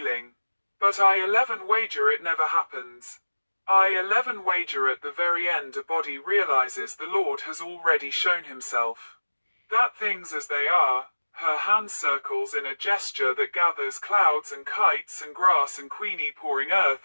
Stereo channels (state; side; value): inverted; both; correlation -1.00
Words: But I 11 wager it never happens. I 11 wager at the very end a body realizes the Lord has already shown himself. That things as they are, her hand circles in a gesture that gathers clouds and kites and grass and Queenie pouring